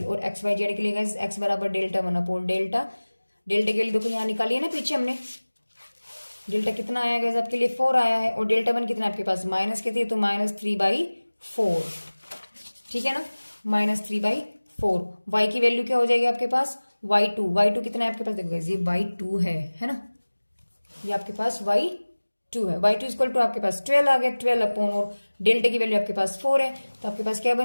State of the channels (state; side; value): inverted; both; correlation -1.00